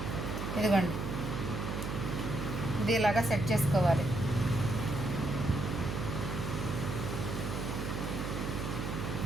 ఇదిగోండి ఇది ఇలాగా సెట్ చేసుకోవాలి.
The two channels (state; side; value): noise; right; hum, 3 dB below the sound